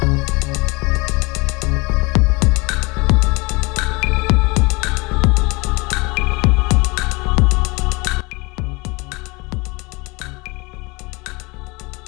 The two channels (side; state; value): right; quieter; 26.3 dB